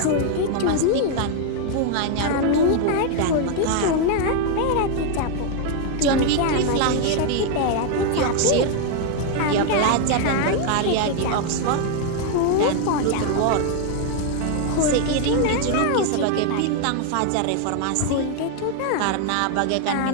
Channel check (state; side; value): different; both; correlation 0.01